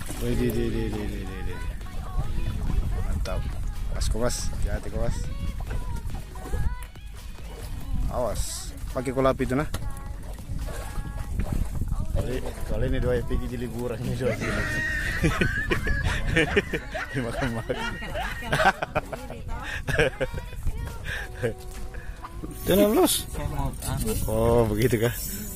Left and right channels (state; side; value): identical; both; correlation 1.00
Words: Mantap. Kowas, hati kowas. Awas, pakai kolap itu nah. Kali ini dua pergi di liburan ini dua. Makan-makan. Jangan los. Oh begitu kah?